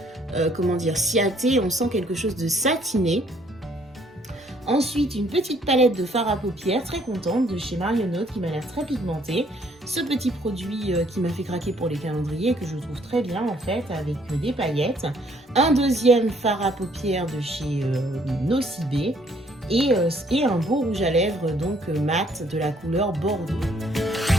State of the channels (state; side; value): normal; both; correlation 0.64